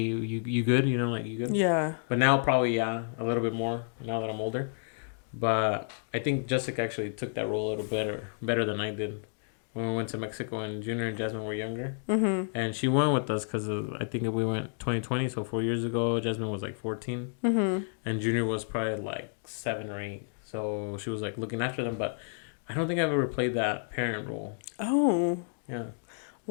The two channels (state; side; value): silent; right; digital silence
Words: good? You know, like you good? Yeah. But now probably yeah, a little bit more now that I'm older. But I think Jessica actually took that role a little better than I did when we went to Mexico and Junior and Jasmine were younger. Mhm. And she went with us because I think we went 2020, so 4 years ago. Jasmine was like 14, Mhm. and Junior was probably like 7 or 8. So she was like looking after them. But I don't think I've ever played that parent role. Oh. Yeah.